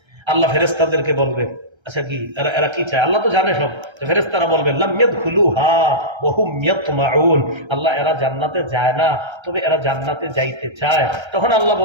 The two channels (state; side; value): late; left; 1.3 ms